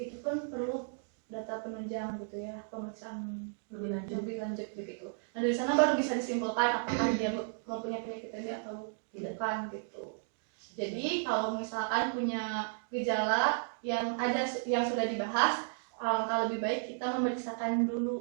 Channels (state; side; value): silent; left; digital silence